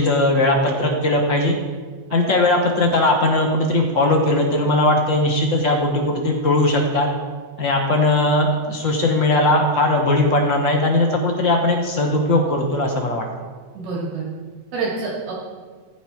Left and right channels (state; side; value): late; left; 7.9 ms